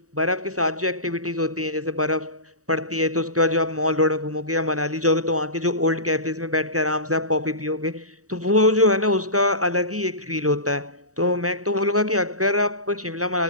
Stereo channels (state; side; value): late; left; 0.66 ms